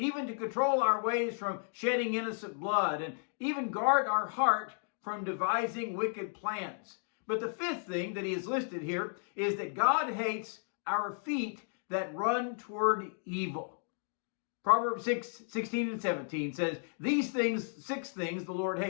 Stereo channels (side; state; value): right; silent; 55 dB below the other